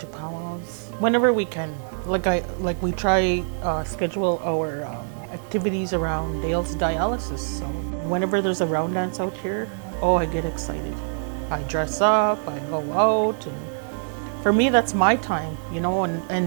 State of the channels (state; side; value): silent; left; 61 dB below the other